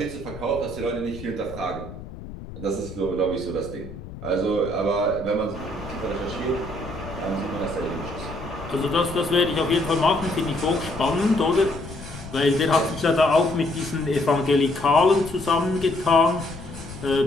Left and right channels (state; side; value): noise; left; rumble, 13 dB below the sound